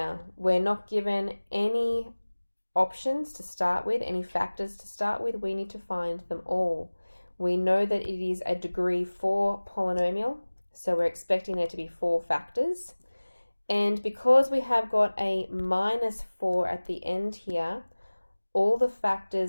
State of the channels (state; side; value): inverted; both; correlation -1.00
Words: we're not given any options to start with, any factors to start with. We need to find them all. We know that it is a degree 4 polynomial, so we're expecting there to be 4 factors. And because we have got a minus 4 at the end here, all the